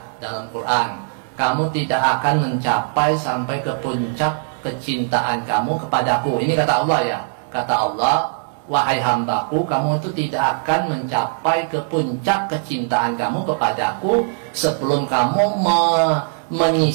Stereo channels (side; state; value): left; silent; 66 dB below the other